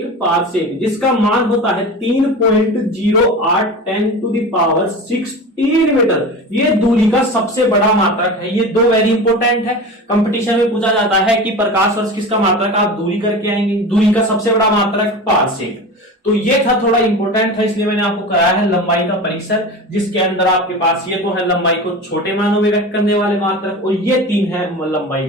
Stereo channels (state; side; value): normal; both; correlation 0.30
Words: जिसका मान होता है 3.0810⁻16 मीटर। ये दूरी का सबसे बड़ा मात्रक है। ये 2 वेरी इंपॉर्टेंट है। कंपटीशन में पूछा जाता है कि प्रकाश वर्ष किसका मात्रक, आप दूरी करके आएंगे। दूरी का सबसे बड़ा मात्रक पारसेक। तो ये था, थोड़ा इंपॉर्टेंट था, इसलिए मैंने आपको कराया है लंबाई का परिसर, जिसके अंदर आपके पास ये तो है लंबाई को छोटे मानों में व्यक्त करने वाले मात्रक, और ये 3 है लंबाई